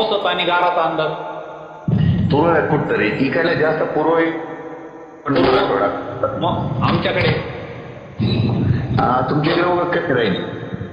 आणि गाराचा अंदाज तुरळ आहे कुठतरी. इकडे जास्त पूर्व आहे, पण थोडा. मग आमच्याकडे तुमच्याकडे वगैरे कधी राहील?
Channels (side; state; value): both; identical; correlation 1.00